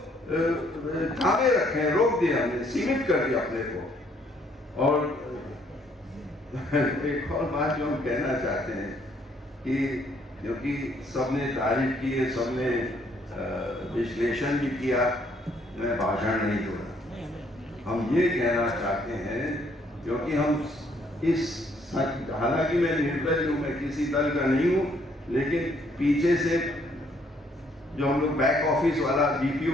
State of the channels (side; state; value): both; normal; correlation 0.67